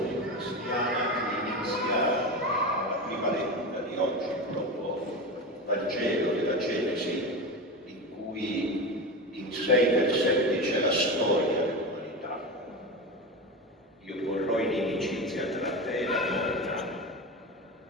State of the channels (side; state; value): both; normal; correlation 0.22